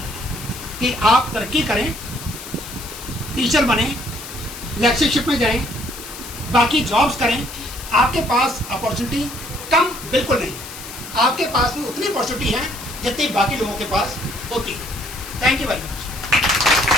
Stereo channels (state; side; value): noise; left; hiss, 13 dB below the sound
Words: कि आप तरक्की करें, टीचर बने, लेक्चरशिप में जाएं, बाकी जॉब्स करें। आपके पास अपॉर्चुनिटी कम बिल्कुल नहीं, आपके पास भी उतनी अपॉर्चुनिटी है जितनी बाकी लोगों के पास होती है। Thank you very much.